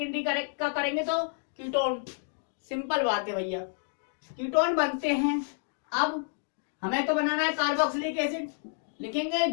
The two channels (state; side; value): silent; right; digital silence